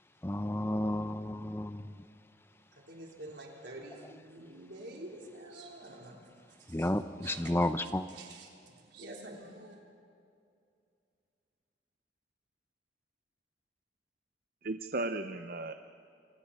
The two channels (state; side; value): normal; both; correlation 0.71